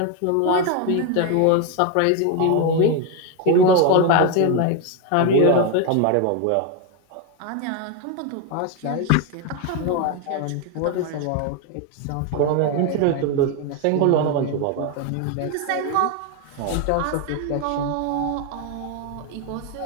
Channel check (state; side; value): different; both; correlation 0.01